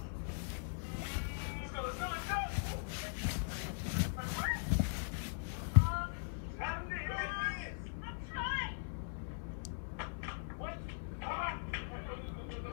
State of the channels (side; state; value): right; silent; 51 dB below the other